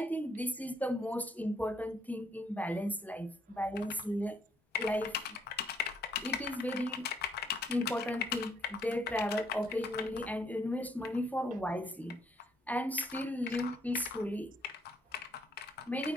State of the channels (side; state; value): both; normal; correlation 0.70